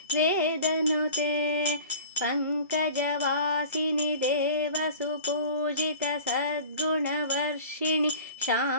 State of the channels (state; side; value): inverted; both; correlation -0.42